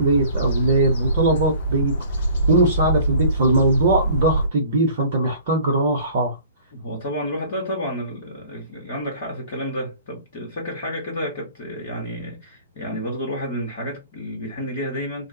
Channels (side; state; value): both; inverted; correlation -0.49